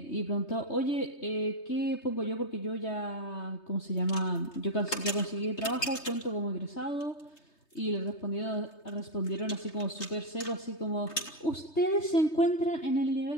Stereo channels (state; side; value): late; right; 3.2 ms